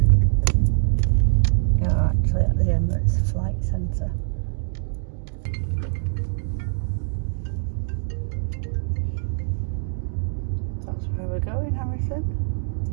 You're actually at the Emirates Flight Centre. That's where we're going, Harrison.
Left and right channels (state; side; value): silent; left; digital silence